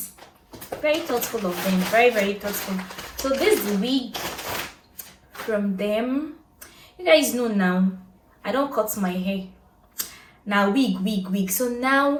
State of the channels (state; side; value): identical; both; correlation 1.00